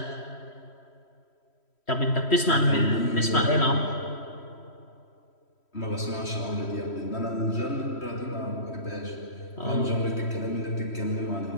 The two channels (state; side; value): late; right; 3.1 ms